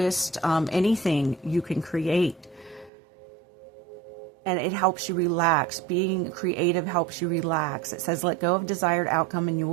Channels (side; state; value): left; drops out; at 2.9 s